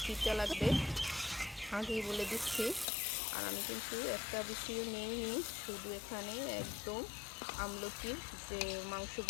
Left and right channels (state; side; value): drops out; right; at 2.9 s